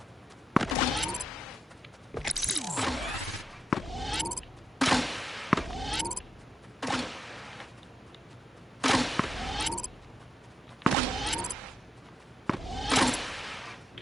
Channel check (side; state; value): both; normal; correlation 0.87